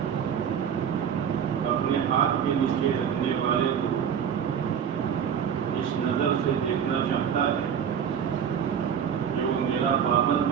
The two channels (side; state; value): left; quieter; 8.1 dB